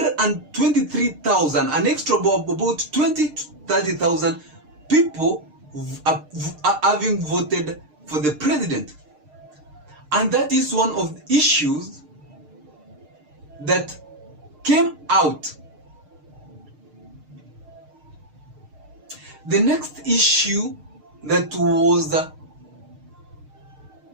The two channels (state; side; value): late; left; 6.6 ms